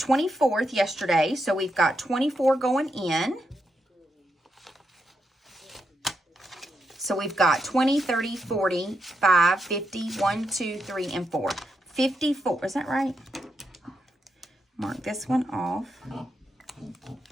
yesterday, so we've got 24 going in. So we've got 20, 30, 40, 5, 50, 1, 2, 3, and 4. 54, is that right? Mark this one off.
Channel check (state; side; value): normal; both; correlation 0.83